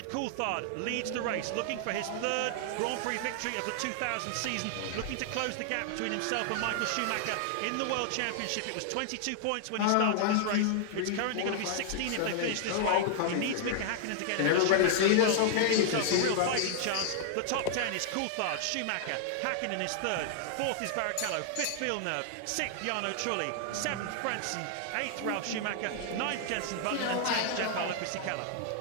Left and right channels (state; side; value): different; both; correlation -0.01